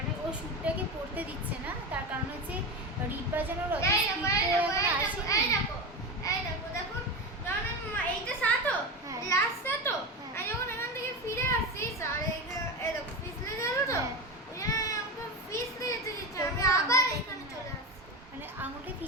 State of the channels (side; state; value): both; normal; correlation 0.20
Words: ও শ্যুটটাকে পড়তে দিচ্ছে না, তার কারণ হচ্ছে রিট বাজানোর অত এই স্পিড দেখো, তো এই এখন দেখো, আসেনি। এই দেখো, এই দেখো, দেখুন, যখন এইটা সাতো, হ্যাঁ। লাস্ট সাতো, হ্যাঁ। আমি যখন এখান থেকে ফিরে আসছি, আর এই দেখো, পিছলে গেল তো, হ্যাঁ। ওই জন্য আমি আমাকে পিছলে যেতে দিচ্ছে, আমি তবুও আবার আঙুলটা এখানে হ্যাঁ। চলে আসছি। মানে আঙুলটা